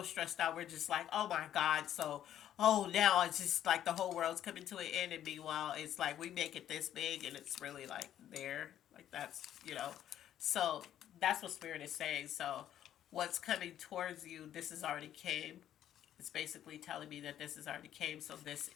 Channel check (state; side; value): quieter; right; 11.1 dB